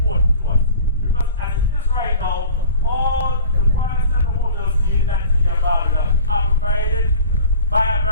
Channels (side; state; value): both; inverted; correlation -0.42